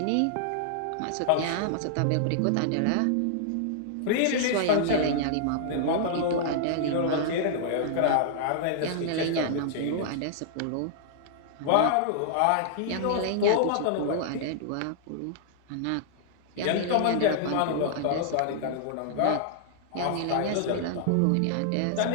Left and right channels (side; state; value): both; different; correlation -0.01